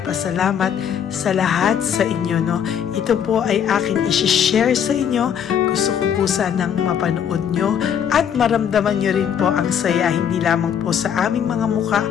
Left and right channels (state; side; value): quieter; right; 8.5 dB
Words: sa lahat sa inyo, no? Ito po ay aking isi-share sa inyo. Gusto ko po sanang mapanood nyo at maramdaman nyo rin po ang saya hindi lamang po sa aming mga mukha